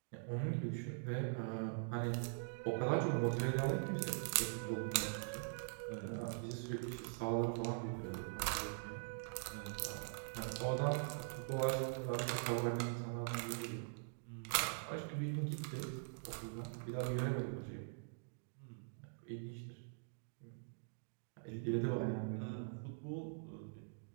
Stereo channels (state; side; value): silent; left; digital silence